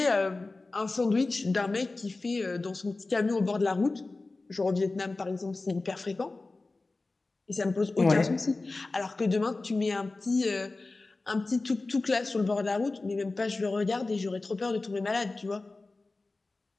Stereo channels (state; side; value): quieter; right; 3.4 dB